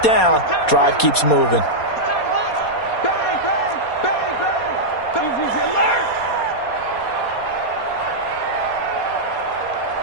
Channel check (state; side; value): late; right; 4.2 ms